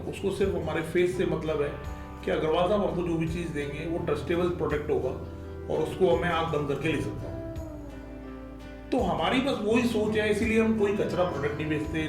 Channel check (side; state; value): both; identical; correlation 1.00